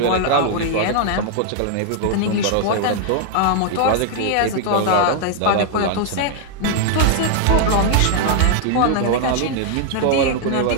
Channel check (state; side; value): different; both; correlation 0.00